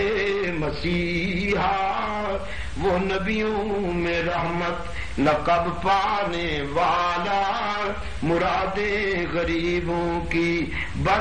مسیحا، وہ نبیوں میں رحمت لقب پانے والا، مراد غریبوں کی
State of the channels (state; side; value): identical; both; correlation 1.00